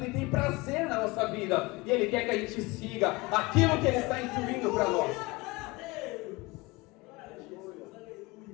e tem prazer na nossa vida, e Ele quer que a gente siga aquilo que Ele está instruindo para nós.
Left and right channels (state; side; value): quieter; right; 23.6 dB